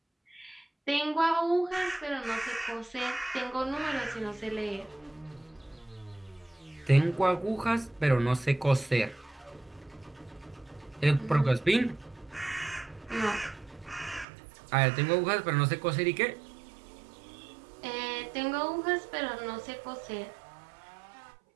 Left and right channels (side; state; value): left; drops out; at 14.2 s